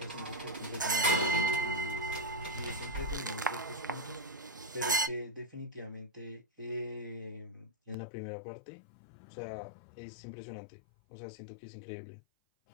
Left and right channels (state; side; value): drops out; right; at 8.0 s